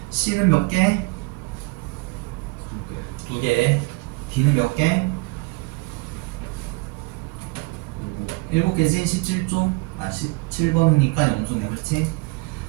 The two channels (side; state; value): left; quieter; 26.0 dB